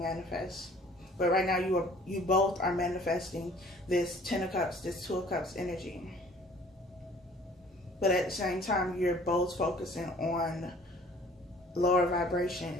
But right now you both are manifesting this 10 of Cups, this 2 of Cups energy. But at the same time, you're both focusing on lower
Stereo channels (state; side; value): normal; both; correlation 0.52